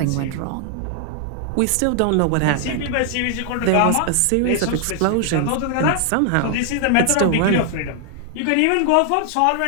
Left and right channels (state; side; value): different; both; correlation 0.00